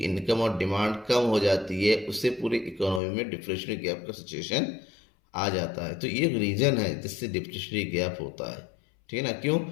इनकम और डिमांड कम हो जाती है, उससे पूरी इकोनॉमी में डिफ्लेशनरी गैप का सिचुएशन आ जाता है। तो ये एक रीजन है जिससे डिफ्लेशनरी गैप होता है। ठीक है ना, क्यों?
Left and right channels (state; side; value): drops out; right; at 3.0 s